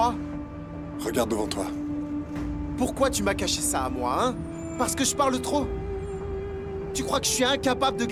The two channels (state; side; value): identical; both; correlation 1.00